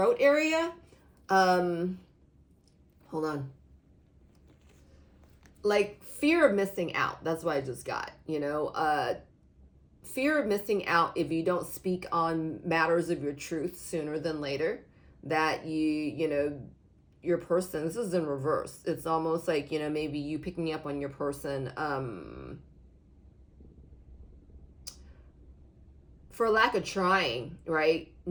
area. Hold on. Like fear of missing out. That's what I just got. Fear of missing out if you don't speak on matters of your truth sooner than later. That your person, this is in reverse. It's almost like, maybe you picking up on your person, for lack of trying, right?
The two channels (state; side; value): identical; both; correlation 1.00